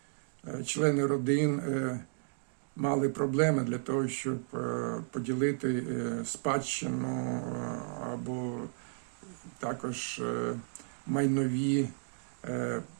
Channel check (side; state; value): left; silent; digital silence